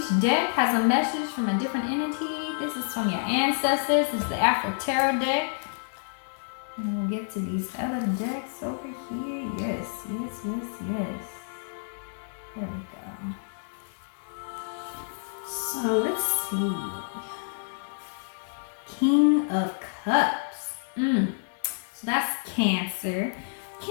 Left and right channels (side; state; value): right; silent; digital silence